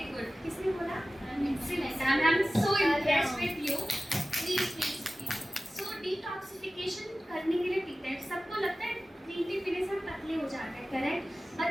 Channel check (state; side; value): normal; both; correlation 0.96